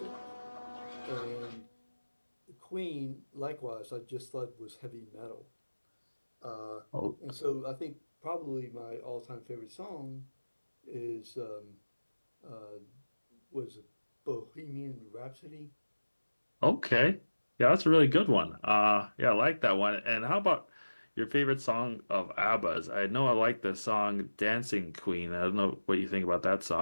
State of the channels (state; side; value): inverted; both; correlation -1.00